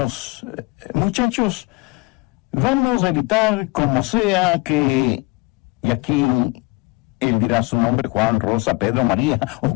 muchachos, vamos a evitar como sea que, y aquí él dirá su nombre, Juan, Rosa, Pedro, María, o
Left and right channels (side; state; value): right; quieter; 25.1 dB